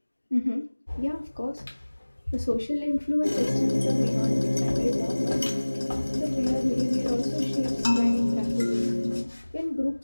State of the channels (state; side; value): inverted; both; correlation -1.00